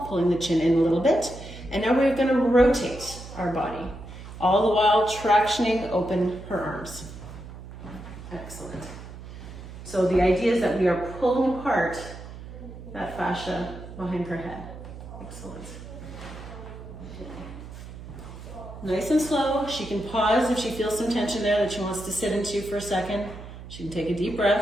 pulling the chin in a little bit, and now we're gonna rotate our body, all the while tractioning open her arms. Excellent. So the idea is that we are pulling apart that fascia behind her head. Excellent. Nice and slow. She can pause if she feels some tension there that she wants to sit into for a second. She can take a deep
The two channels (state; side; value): noise; right; hum, 13 dB below the sound